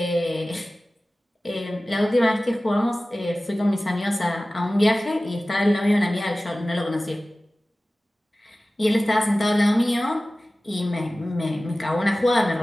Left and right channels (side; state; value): both; normal; correlation 0.97